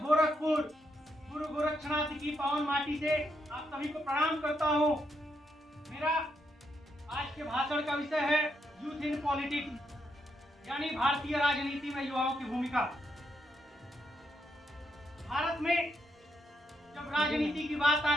गुरु गोरक्षनाथ की पावन माटी से आप सभी को प्रणाम करता हूं। मेरा आज के भाषण का विषय है यूथ इन पॉलिटिक्स, यानी भारतीय राजनीति में युवाओं की भूमिका। भारत में जब राजनीति की बात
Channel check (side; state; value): both; normal; correlation 0.79